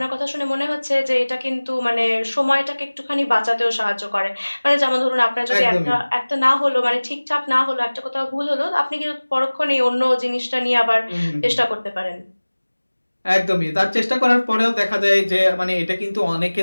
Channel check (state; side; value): inverted; both; correlation -1.00